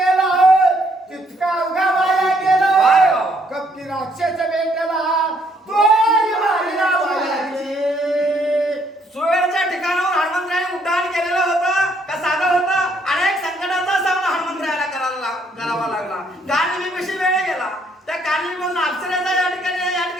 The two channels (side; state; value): both; normal; correlation 0.69